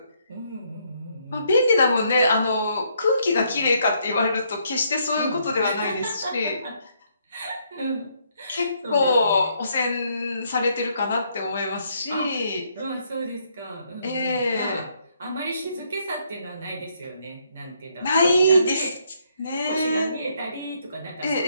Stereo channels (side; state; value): both; inverted; correlation -0.71